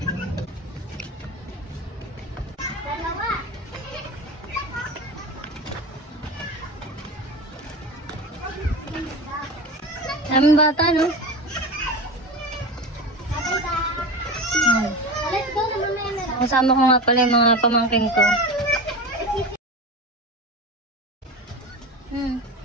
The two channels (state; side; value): normal; both; correlation 0.28